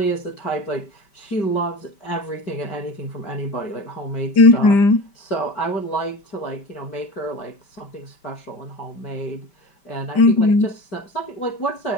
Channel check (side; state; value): right; late; 5.1 ms